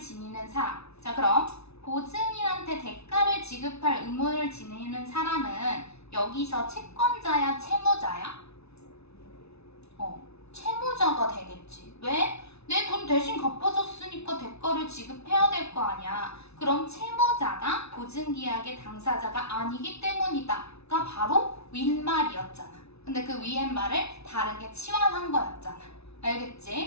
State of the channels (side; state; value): right; late; 0.80 ms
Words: 사람. 자, 그럼 보증인한테 대가를 지급할 의무를 지니는 사람은 여기서 채권자야, 채무자야? 채무자가 되겠지. 왜? 내 돈 대신 갚아줬으니까 대가를 지급해야 될 거 아니야. 그럼 채무자가 보증계약의 당사자가 아니기 때문이다가 바로 윗말이었잖아. 근데 그 위에 말을 다르게 치환한 거였잖아.